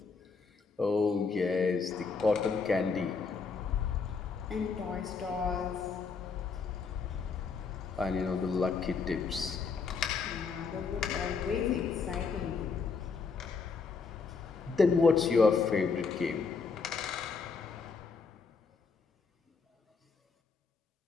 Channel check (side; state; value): right; quieter; 5.0 dB